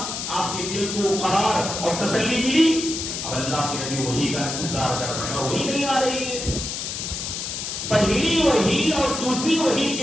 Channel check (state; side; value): noise; left; hiss, 5 dB below the sound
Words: آپ کے دل کو قرار اور تسلی ملی۔ اب اللہ کے نبی وحی کا انتظار کر رہے ہیں اور وحی نہیں آ رہی ہے۔ پہلی وحی اور دوسری وحی